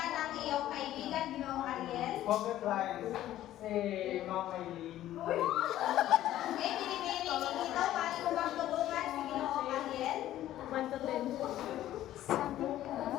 ng iyong kaibigan, Ginoong Ariel. pocket lines si Ma'am Aileen. Okay, binibining dito. Paano mo bang tulungan si Ginoong Ariel? 1 to 10.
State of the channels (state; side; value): quieter; right; 13.3 dB